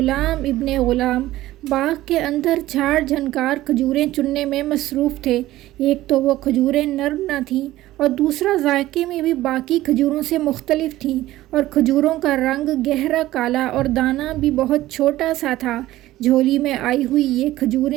ابن غلام باغ کے اندر جھاڑ جھنکار کھجوریں چننے میں مصروف تھے۔ ایک تو وہ کھجوریں نرم نہ تھیں اور دوسرا ذائقے میں بھی باقی کھجوروں سے مختلف تھیں، اور کھجوروں کا رنگ گہرا کالا اور دانہ بھی بہت چھوٹا سا تھا۔ جھولی میں آئی ہوئی یہ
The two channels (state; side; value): quieter; left; 15.8 dB